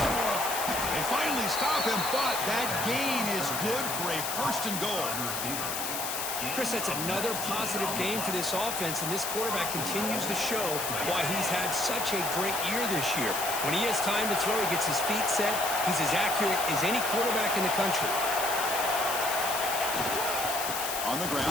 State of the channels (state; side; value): noise; left; hiss, 3 dB below the sound